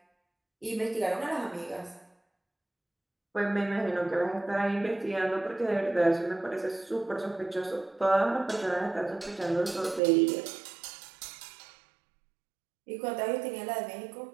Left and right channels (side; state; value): left; drops out; at 10.0 s